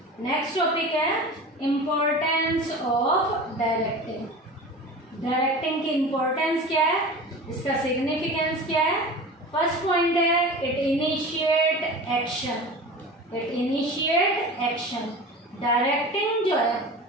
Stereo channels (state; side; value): normal; both; correlation 0.34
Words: Next topic है importance of directing. Directing की importance क्या है, इसका significance क्या है। First point है it initiate action, it initiate action. Directing जो